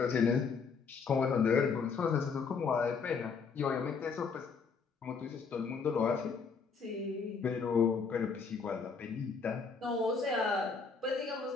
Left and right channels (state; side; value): quieter; right; 5.3 dB